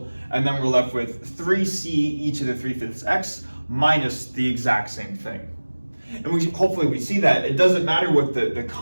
and then we're left with 3c e to the 3/5 x minus the exact same thing. And hopefully we see that it doesn't matter what the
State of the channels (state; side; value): inverted; both; correlation -1.00